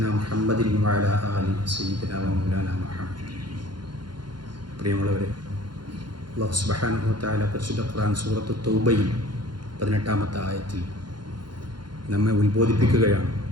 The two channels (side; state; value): left; late; 0.71 ms